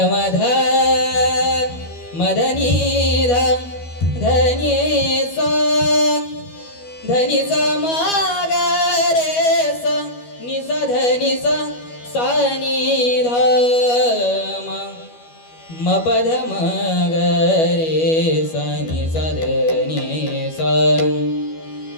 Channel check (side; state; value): right; late; 12 ms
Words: मध मदनी ध धनी सा धनी सा माग रे सा नि सा धनी सा सा नि ध म पद म ग रे सा नि सा धनी सा